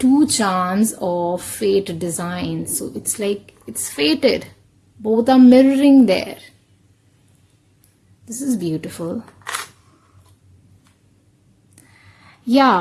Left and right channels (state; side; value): identical; both; correlation 1.00